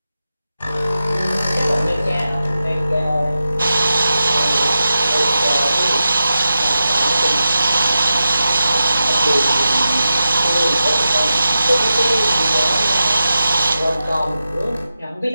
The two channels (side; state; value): both; inverted; correlation -0.91